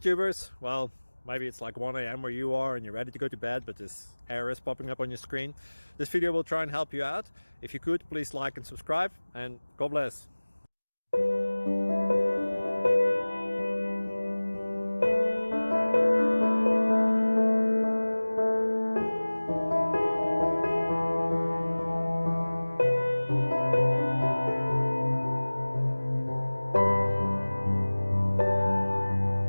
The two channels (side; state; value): both; inverted; correlation -1.00